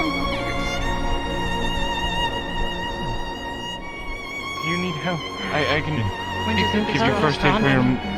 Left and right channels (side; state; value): both; identical; correlation 1.00